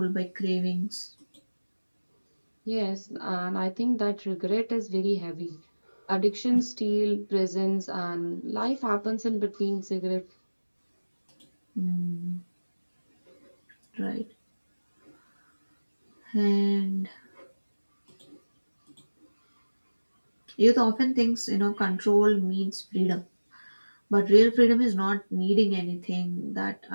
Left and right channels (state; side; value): inverted; both; correlation -1.00